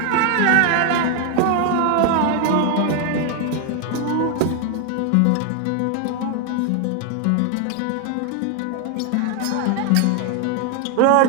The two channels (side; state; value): both; different; correlation 0.01